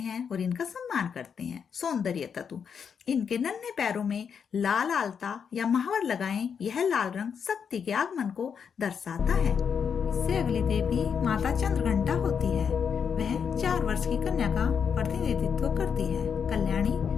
और इनका सम्मान करते हैं। सौंदर्य तत्व, इनके नन्हे पैरों में लाल आलता या महावर लगाएं। यह लाल रंग शक्ति के आगमन को दर्शाता है। इससे अगली देवी माता चंद्रघंटा होती है। वह 4 वर्ष की कन्या का प्रतिनिधित्व करती है। कल्याणी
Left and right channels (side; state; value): right; quieter; 6.9 dB